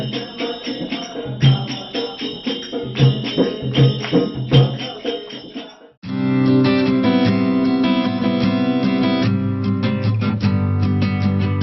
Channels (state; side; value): identical; both; correlation 1.00